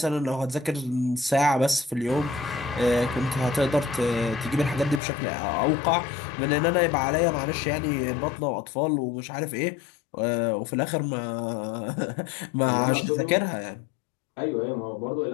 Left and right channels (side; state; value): right; drops out; at 5.0 s